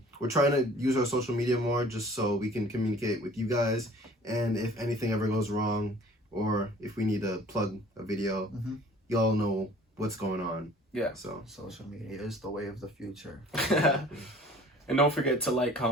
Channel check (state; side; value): normal; both; correlation 0.50